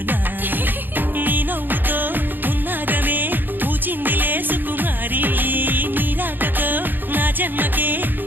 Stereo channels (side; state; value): left; late; 0.092 ms